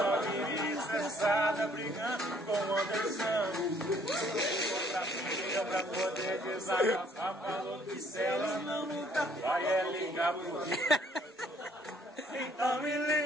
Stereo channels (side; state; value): both; normal; correlation 0.63